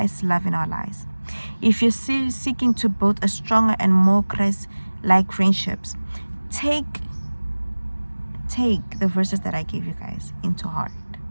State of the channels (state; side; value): inverted; both; correlation -1.00